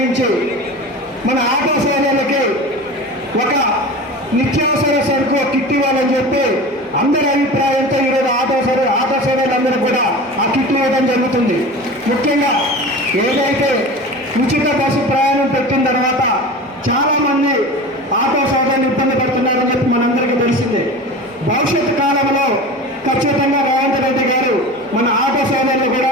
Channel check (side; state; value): both; normal; correlation 0.33